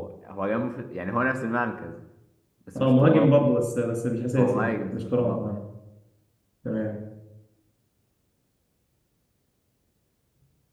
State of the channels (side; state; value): both; identical; correlation 1.00